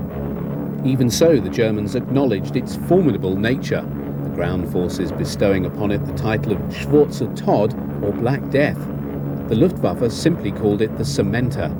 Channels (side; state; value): both; identical; correlation 1.00